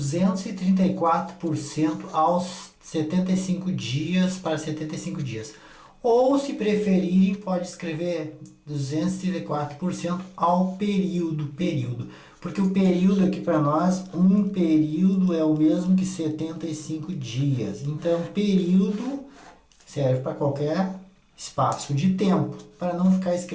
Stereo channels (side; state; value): both; identical; correlation 1.00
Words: aos 75 dias para 75 dias. Ou, se preferirem, pode escrever 234% ao período. Porque o período aqui para nós, um período é o mesmo que 75 dias. Então, período serve para qualquer espaço de tempo, para não ficar